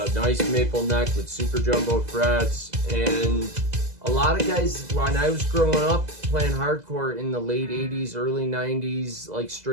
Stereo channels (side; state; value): left; late; 2.0 ms